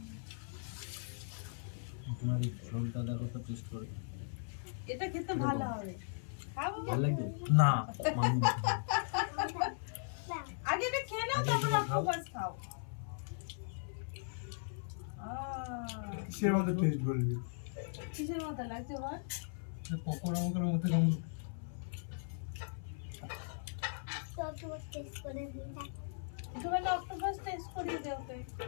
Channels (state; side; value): silent; right; 52 dB below the other